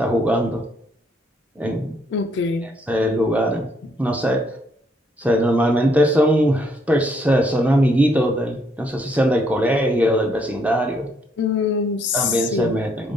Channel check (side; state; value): both; normal; correlation 0.71